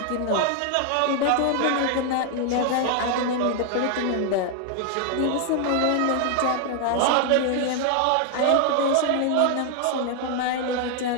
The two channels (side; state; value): both; different; correlation 0.00